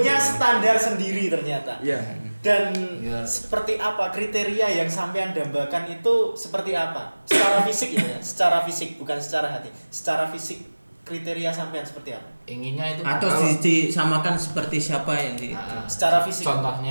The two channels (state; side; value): inverted; both; correlation -1.00